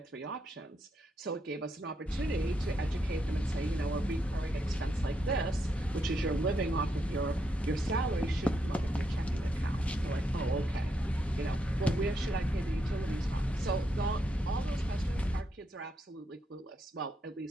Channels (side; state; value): both; normal; correlation 0.80